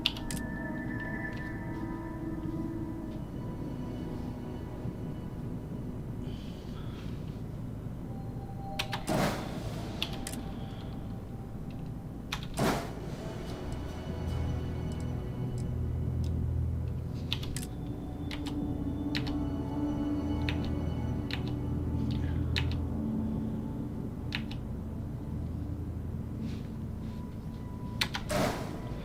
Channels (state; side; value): identical; both; correlation 1.00